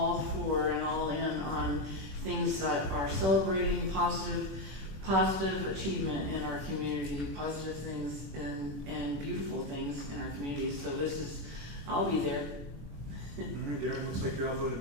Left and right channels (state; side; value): late; left; 21 ms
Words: for and all in on things that are celebrating positive achievement in our community, positive things and beautiful things in our community. So I'll be there. All right, Darren, looks like you're outvoted.